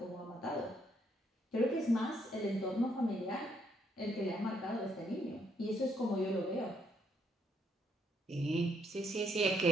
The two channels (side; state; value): both; normal; correlation 0.72